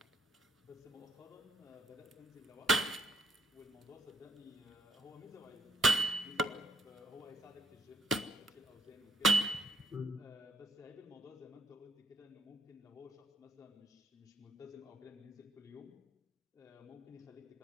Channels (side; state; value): both; normal; correlation 0.70